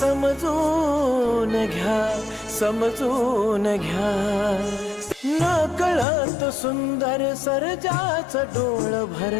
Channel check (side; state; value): right; drops out; at 6.1 s